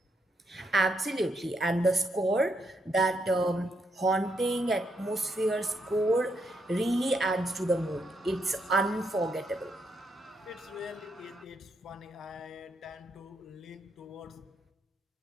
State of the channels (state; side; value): normal; both; correlation 0.78